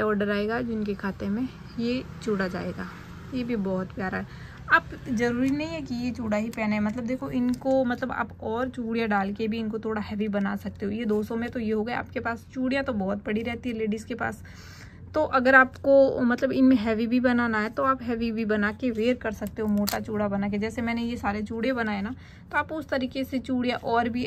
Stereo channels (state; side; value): identical; both; correlation 1.00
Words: ऑर्डर आएगा, जिनके खाते में ये चूड़ा जाएगा। ये भी बहुत प्यारा है। आप ज़रूरी नहीं है कि ये चूड़ा ही पहने, मतलब देखो इनको, मतलब आप और चूड़ियाँ डाल के भी इनको थोड़ा हैवी बना सकते हो। ये 200 में तो ये हो गया। आपके पास चूड़ियाँ तो बहुत पड़ी रहती है लेडीज़ के पास, तो अगर आपको मतलब इनमें हैवी भी बनाना है तो आप हैवी भी बना के वेयर कर सकते हो, मोटा चूड़ा बना के। जैसे मैंने ये सारे चूड़े बनाए ना, तो आप उस तरीके से चूड़ियाँ और भी